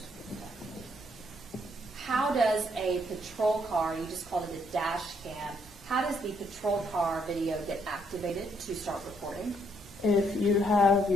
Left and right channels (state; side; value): normal; both; correlation 0.71